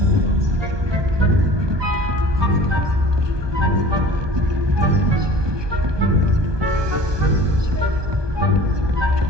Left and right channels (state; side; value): late; left; 1.2 ms